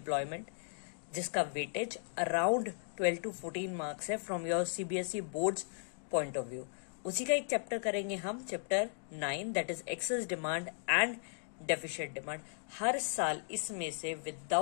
जिसका वेटेज अराउंड 12 to 14 मार्क्स है from your CBSE boards point of view. उसी का एक चैप्टर करेंगे हम, chapter 9, that is excess demand and deficient demand. हर साल इसमें से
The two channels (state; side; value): silent; right; digital silence